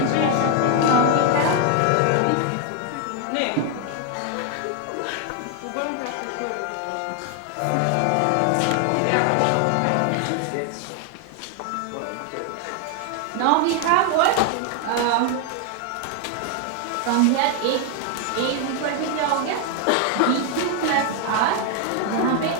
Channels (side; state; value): both; different; correlation 0.01